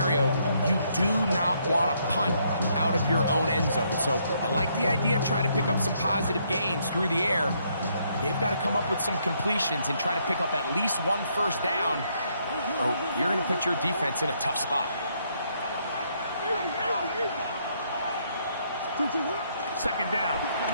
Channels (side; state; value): both; inverted; correlation -0.72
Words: you do not want to punt out of your own end zone. So I like the idea of trying to pick up some positive gains through the air. They've got to come up with some completions and try to pick up at least 1 first down, or you're going to put your defense in a tough spot. 2nd down,